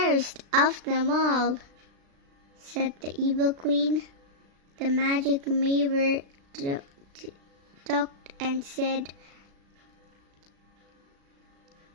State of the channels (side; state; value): left; late; 36 ms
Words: of them all?" Said the evil queen. The magic mirror talked and said,